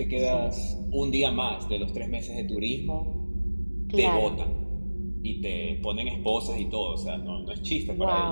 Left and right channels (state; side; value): inverted; both; correlation -1.00